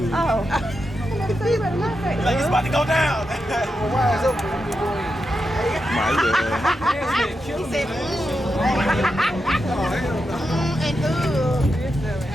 oh. Like it's about to go down. Why is open? My He said, and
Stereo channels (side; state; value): both; normal; correlation 0.87